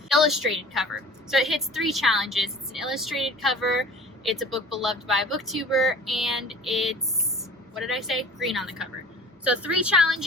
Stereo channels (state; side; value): normal; both; correlation 0.44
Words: Illustrated cover. So it hits 3 challenges. It's an illustrated cover, it's a book beloved by a booktuber, and it's, what did I say? Green on the cover. So 3